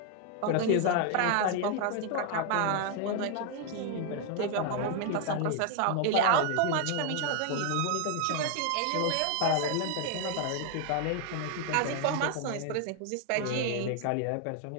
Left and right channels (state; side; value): different; both; correlation 0.00